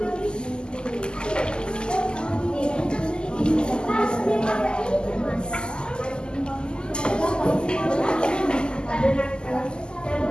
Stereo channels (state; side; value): late; right; 0.047 ms